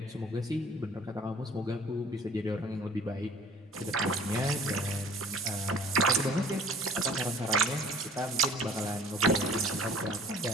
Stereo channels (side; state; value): both; normal; correlation 0.50